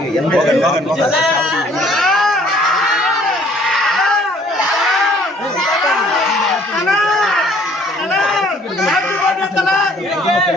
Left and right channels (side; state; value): both; normal; correlation 0.58